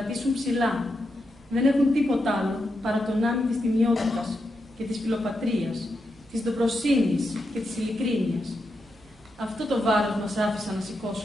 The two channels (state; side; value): normal; both; correlation 0.85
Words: ψηλά. Δεν έχουν τίποτα άλλο παρά τον άμυ της τιμιότητας και της φιλοπατρίας, της ντοπροσύνης και της ειλικρίνειας. Αυτό το βάρος μας άφησαν να